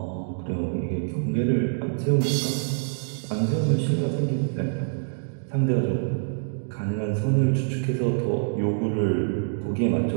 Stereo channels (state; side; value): silent; left; digital silence